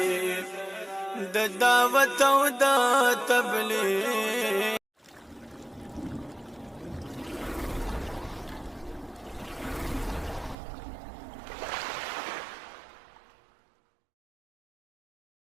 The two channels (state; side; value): drops out; left; at 10.6 s